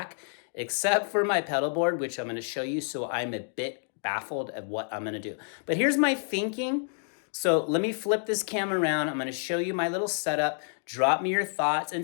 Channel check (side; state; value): right; silent; 59 dB below the other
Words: except for my pedal board, which I'm going to show you, so I'm a bit baffled at what I'm going to do. But here's my thinking. So let me flip this camera around. I'm gonna show you my little setup. Drop me your thoughts and